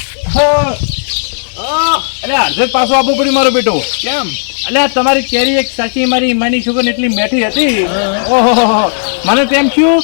અરે અડધે પાછો આપવું પડ્યું મારો બેટો કેમ એટલે તમારી કેરી એક સાચી મારી માની છોકરી એટલી મેઠી હતી હા. ઓહો મને તેમ થયું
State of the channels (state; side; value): silent; right; digital silence